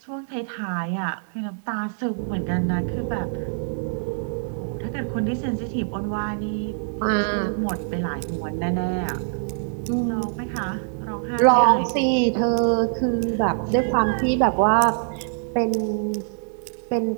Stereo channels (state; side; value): silent; left; digital silence